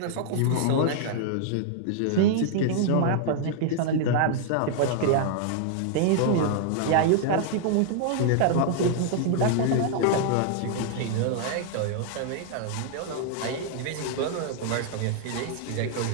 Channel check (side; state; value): both; different; correlation -0.01